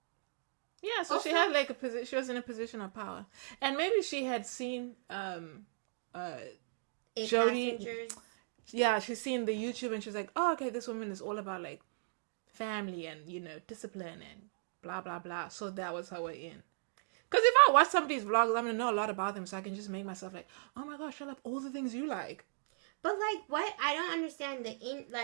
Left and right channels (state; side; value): silent; left; digital silence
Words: yeah, so also, she had like she was in a position of power. And maybe she had seen Jodi. Passengers. Yeah, she's seen the YouTube and she's like, oh, okay, this woman is all about like family and, you know, discipline and blah, blah, blah. So that was her way in. Because if I watch somebody's vlogs, I'm going to know a lot about them, so I can just make myself like, oh my gosh, I love all the things you like. But like, what? I don't understand